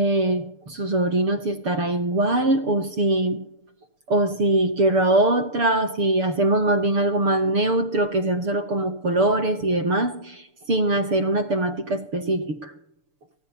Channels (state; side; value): late; left; 6.9 ms